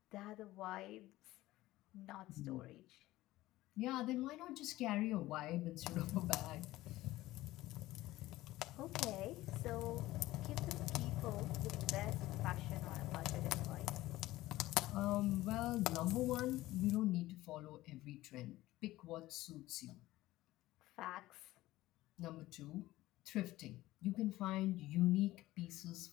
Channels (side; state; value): right; quieter; 16.9 dB